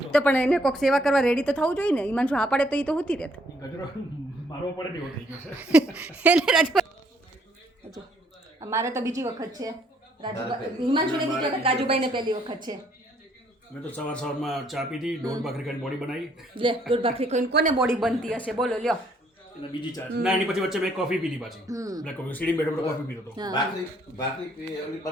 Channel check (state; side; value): normal; both; correlation 0.67